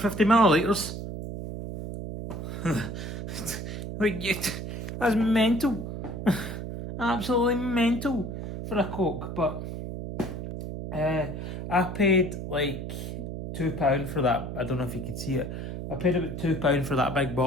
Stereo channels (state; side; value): noise; right; hum, 6 dB below the sound